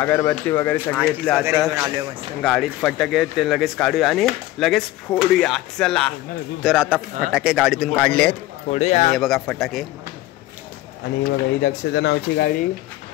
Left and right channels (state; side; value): quieter; right; 16.3 dB